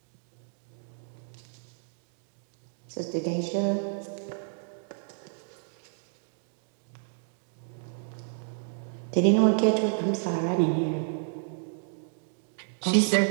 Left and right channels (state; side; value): silent; left; digital silence